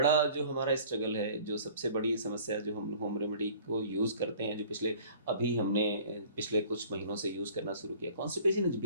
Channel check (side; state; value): both; inverted; correlation -0.50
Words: जो हमारा स्ट्रगल है, जो सबसे बड़ी समस्या जो हम होम रेमेडी को यूज़ करते हैं, जो हमने पिछले कुछ महीनों से यूज़ करना शुरू किया, constipation is